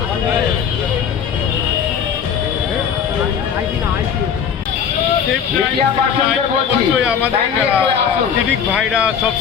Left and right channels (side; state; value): right; quieter; 7.6 dB